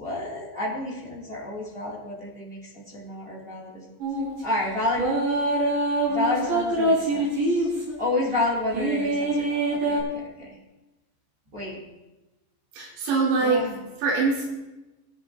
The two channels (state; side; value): late; left; 15 ms